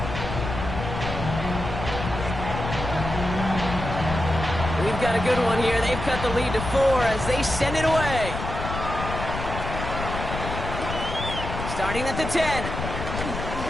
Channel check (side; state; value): left; noise; rumble, 6 dB below the sound